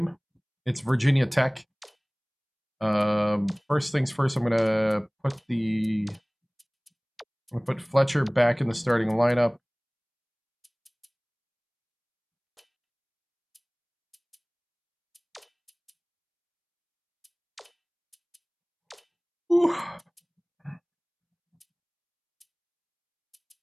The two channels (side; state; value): both; identical; correlation 1.00